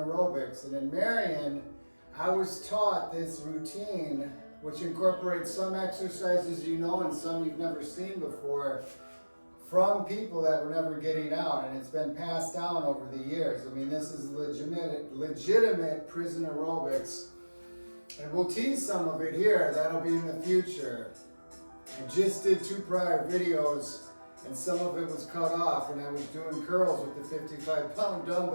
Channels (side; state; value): both; inverted; correlation -1.00